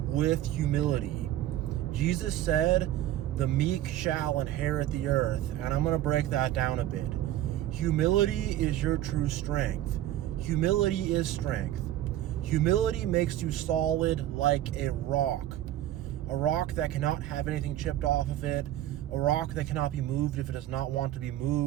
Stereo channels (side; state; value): left; quieter; 13.2 dB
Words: with humility. Jesus said, "The meek shall inherit the earth," and I'm going to break that down a bit. Humility is your true strength. Humility is strength. Humility makes you solid like a rock that cannot have anything chipped off of it, a rock that cannot be moved if it does not want to be